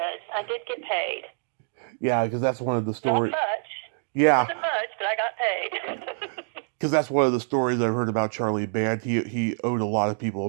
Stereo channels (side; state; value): left; silent; digital silence